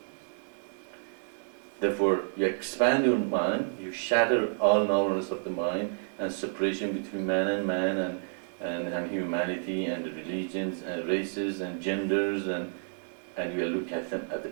Therefore, you expand your mind, you shatter all narrowness of the mind and separation between man and humanity and religions and races and genders, and you look at them as a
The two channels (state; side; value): silent; left; digital silence